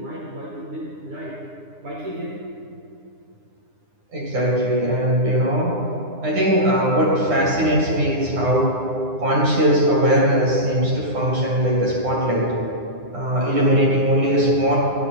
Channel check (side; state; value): left; late; 9.8 ms